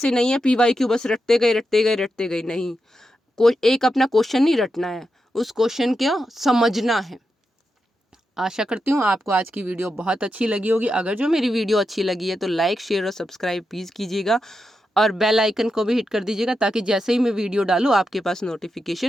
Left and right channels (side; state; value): both; normal; correlation 0.87